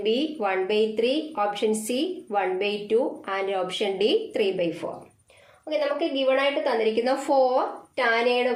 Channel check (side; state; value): both; identical; correlation 1.00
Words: B 1/3, option C 1/2 and option D 3/4. Okay, നമുക്ക് given ആയിട്ട് തന്നിരിക്കുന്ന 4 tan എയുടെ